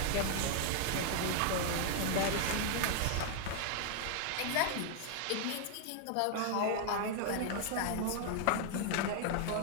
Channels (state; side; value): different; both; correlation 0.00